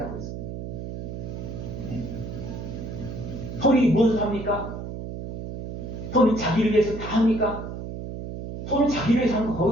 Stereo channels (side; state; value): right; noise; hum, 7 dB below the sound